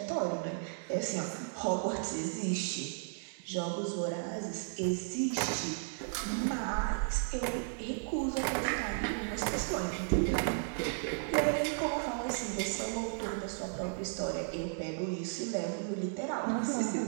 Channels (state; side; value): silent; left; digital silence